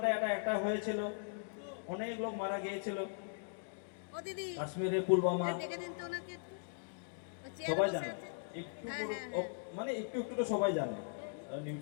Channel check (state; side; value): silent; right; digital silence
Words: একটা হয়েছিল, অনেক লোক মারা গিয়েছিল। কাশ্মীরে পুলওয়ামা সবাই জানে, একটু একটু একটু তো সবাই জানে।